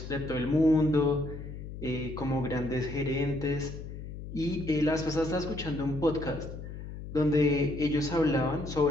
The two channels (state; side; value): noise; left; hum, 10 dB below the sound